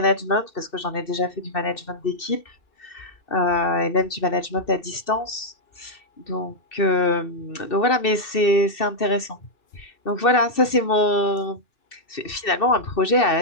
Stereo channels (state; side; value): late; right; 2.7 ms